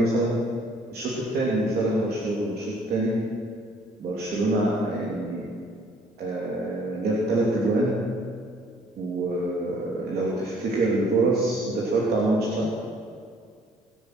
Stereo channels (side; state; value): both; normal; correlation 0.59